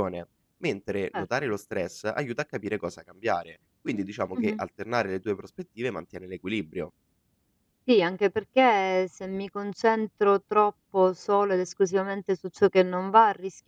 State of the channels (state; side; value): identical; both; correlation 1.00